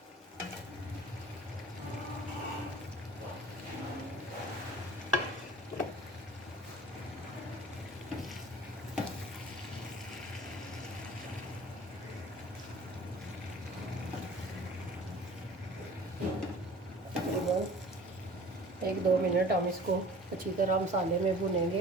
तकरीबन 1-2 मिनट हम इसको अच्छी तरह मसाले में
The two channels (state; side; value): normal; both; correlation 0.46